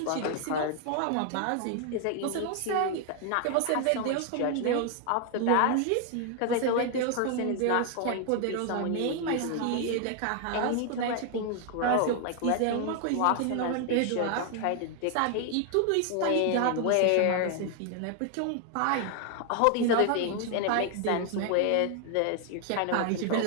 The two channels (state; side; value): different; both; correlation 0.00